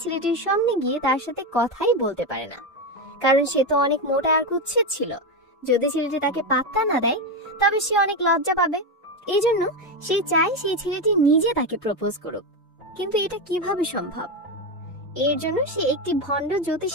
ছেলেটির সামনে গিয়ে তার সাথে কথাই বলতে পারে না, কারণ সে তো অনেক মোটা আর কুৎসিত ছিল। যদি ছেলেটি তাকে পাত্তা না দেয় তবে সে অনেক লজ্জা পাবে। এই জন্য সে চায় সেই ছেলেটি নিজে তাকে প্রপোজ করুক। কিন্তু এটা কিভাবে সম্ভব? এর জন্য সে একটি ভণ্ড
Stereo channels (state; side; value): normal; both; correlation 0.12